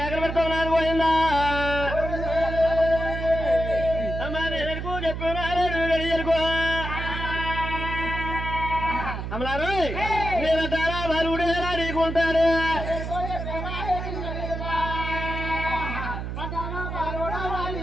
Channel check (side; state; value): right; noise; hum, 5 dB below the sound